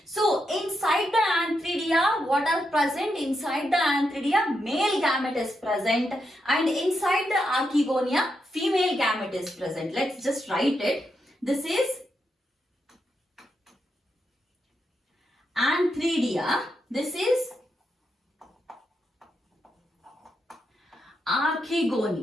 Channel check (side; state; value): both; normal; correlation 0.83